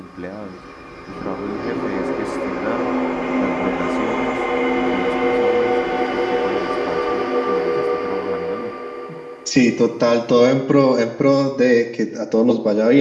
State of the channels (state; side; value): identical; both; correlation 1.00